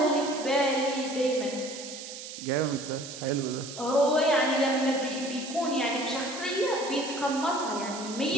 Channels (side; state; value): right; noise; hiss, 11 dB below the sound